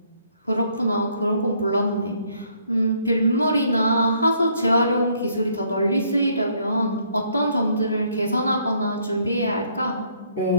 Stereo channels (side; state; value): both; inverted; correlation -0.67